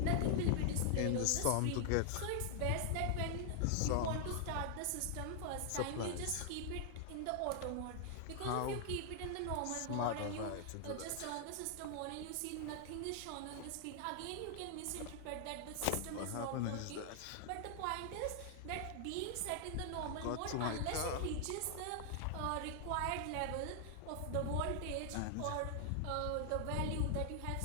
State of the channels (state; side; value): different; both; correlation 0.00